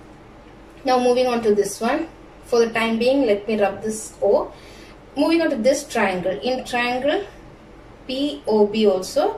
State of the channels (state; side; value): identical; both; correlation 1.00